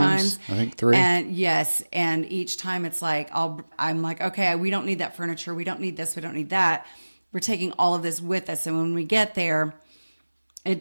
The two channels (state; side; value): inverted; both; correlation -1.00